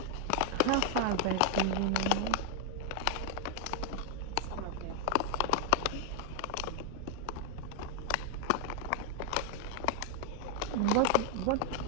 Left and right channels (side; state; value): both; different; correlation 0.00